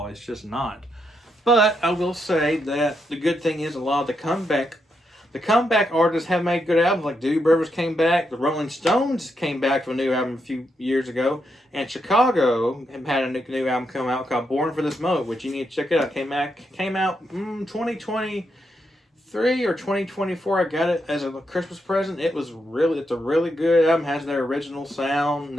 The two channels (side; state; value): both; normal; correlation 0.81